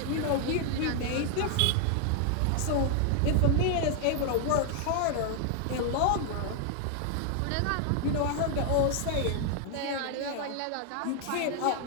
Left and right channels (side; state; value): both; different; correlation 0.00